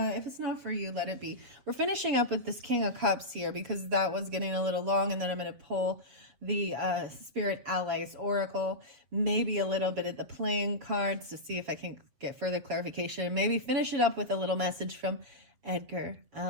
it's not for you, let it be. We're finishing up with this King of Cups here because that was getting a little long, and then I'm gonna pull the Spirit Allies Oracle, maybe a little bit of the playing cards to see if I can get further clarification, and maybe finish it up with a little message from Edgar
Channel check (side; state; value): left; late; 7.4 ms